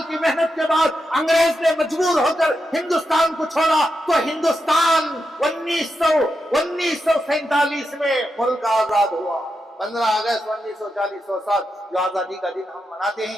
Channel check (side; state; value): both; normal; correlation 0.86